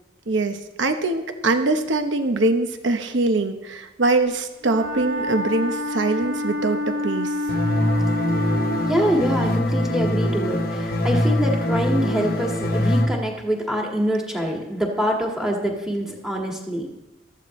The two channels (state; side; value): normal; both; correlation 0.55